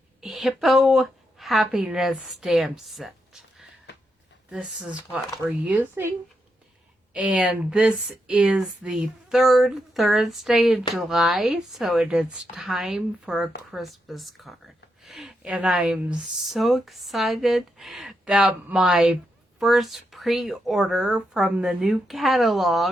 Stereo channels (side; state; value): both; normal; correlation 0.83